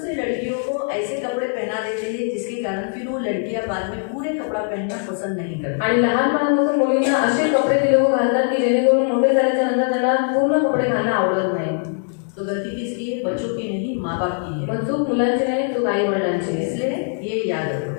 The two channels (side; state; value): right; silent; 57 dB below the other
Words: लड़कियों को ऐसे कपड़े पहना देते हैं जिसके कारण फिर वो लड़कियां बाद में पूरे कपड़ा पहनना पसंद नहीं करती। आणि लहानपणापासून मुलींना असे कपडे ते लोक घालतात की जेणेकरून मोठे झाल्याच्या नंतर त्यांना पूर्ण कपडे घालणं आवडत नाही। तो गलती किसकी है? बच्चों की नहीं, माँ बाप की है। मग चूक मुलांची नाही, चूक आई वडिलांची आहे। इसलिए ये याद